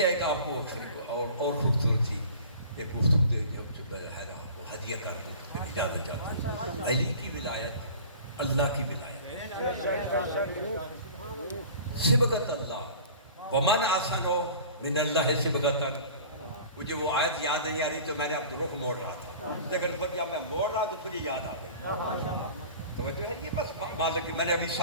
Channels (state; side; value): inverted; both; correlation -0.42